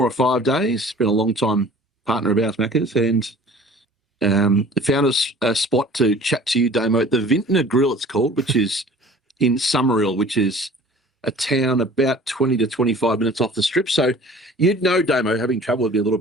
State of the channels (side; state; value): both; normal; correlation 0.46